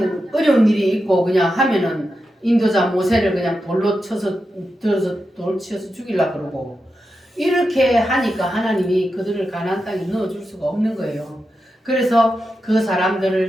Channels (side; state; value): both; normal; correlation 0.89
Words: 어려운 일이 있고 그냥 하면은 인도자 모세를 그냥 돌로 쳐서 들어서 돌 치어서 죽이려고 그러고 이렇게 하니까 하나님이 그들을 가나안 땅에 넣어줄 수가 없는 거예요. 그래서 그